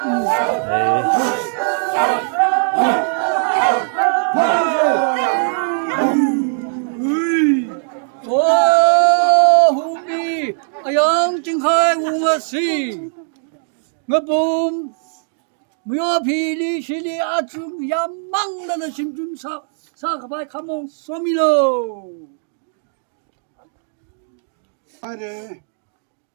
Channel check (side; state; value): left; silent; digital silence